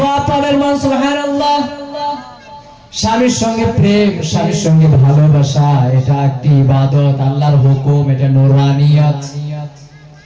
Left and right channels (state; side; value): identical; both; correlation 1.00